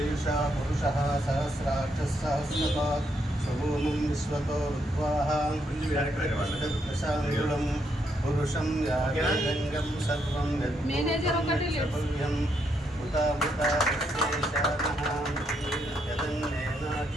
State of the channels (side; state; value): both; normal; correlation 0.77